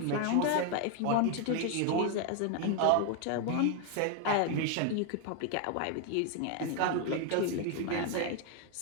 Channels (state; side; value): different; both; correlation 0.01